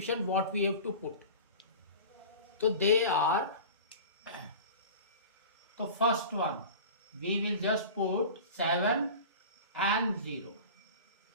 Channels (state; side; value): inverted; both; correlation -0.36